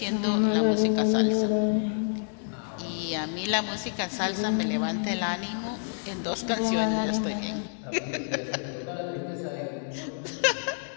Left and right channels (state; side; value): silent; right; digital silence